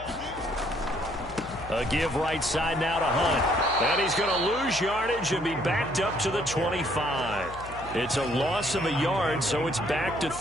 A give right side now to Hunt. And he's going to lose yardage and be backed up to the 25. It's a loss of a yard, so it's back to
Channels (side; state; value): left; noise; hum, 15 dB below the sound